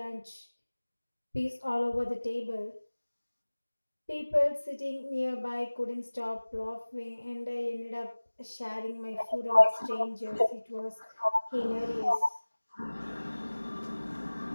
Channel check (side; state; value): both; inverted; correlation -1.00